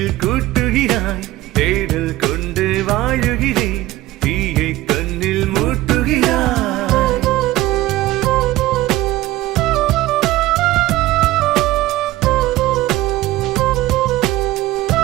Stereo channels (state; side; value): quieter; left; 16.6 dB